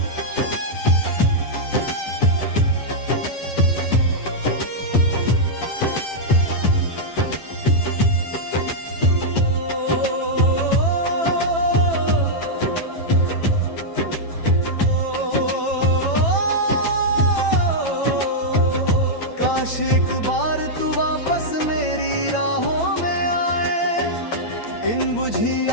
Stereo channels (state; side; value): late; right; 9.0 ms